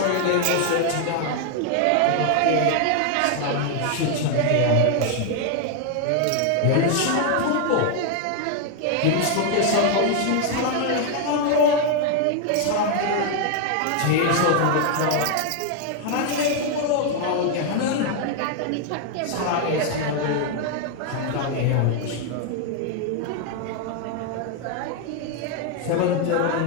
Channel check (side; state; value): both; different; correlation 0.00